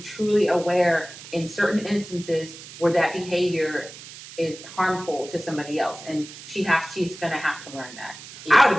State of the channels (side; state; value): right; noise; hiss, 15 dB below the sound